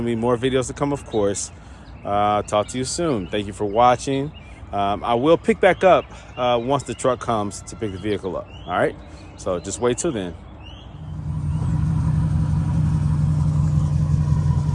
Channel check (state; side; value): identical; both; correlation 1.00